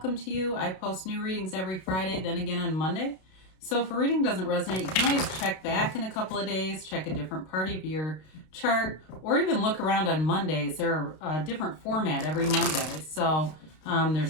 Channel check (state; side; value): late; right; 32 ms